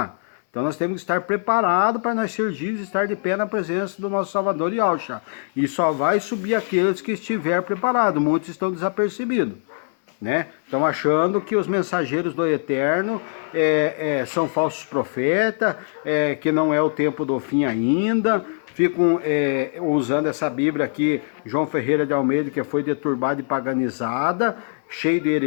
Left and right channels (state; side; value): silent; right; 64 dB below the other